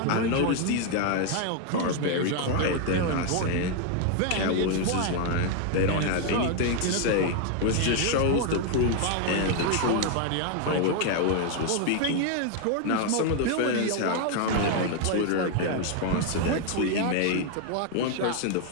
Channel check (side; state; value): both; different; correlation 0.01